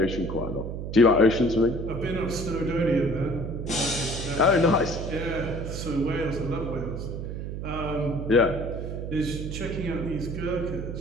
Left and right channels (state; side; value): noise; right; hum, 6 dB below the sound